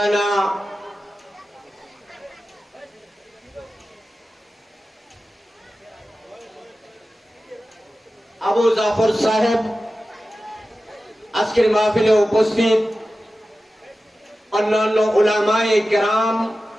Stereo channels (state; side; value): normal; both; correlation 0.94